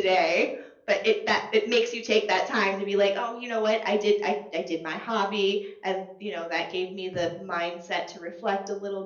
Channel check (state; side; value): identical; both; correlation 1.00